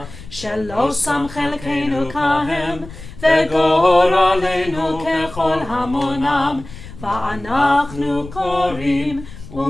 שלא שם חלקנו כהם, וגורלנו ככל המונם, ואנחנו קוראים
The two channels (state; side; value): noise; left; rumble, 15 dB below the sound